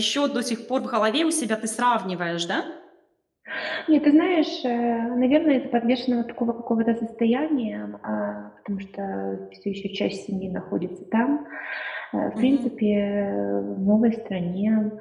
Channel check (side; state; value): both; identical; correlation 1.00